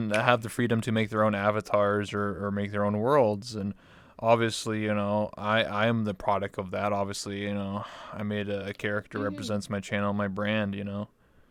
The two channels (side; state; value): both; identical; correlation 1.00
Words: have the freedom to make their own avatars or make their own worlds, and obviously, I am the product of that. Obviously, I made a character Hmm. represents my channel, my brand,